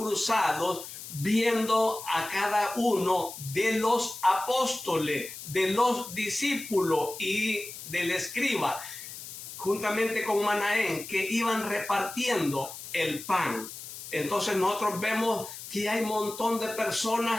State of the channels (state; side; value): noise; left; hiss, 12 dB below the sound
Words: viendo a cada uno de los apóstoles, de los discípulos y del escriba, juntamente con Manaén, que iban repartiendo el pan. Entonces nosotros vemos que hay un montón de